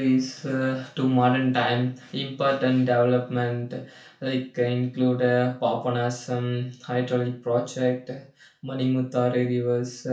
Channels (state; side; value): identical; both; correlation 1.00